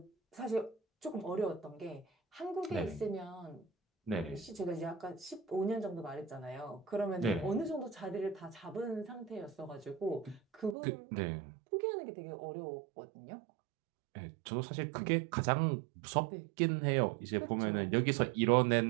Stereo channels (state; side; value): drops out; left; at 10.8 s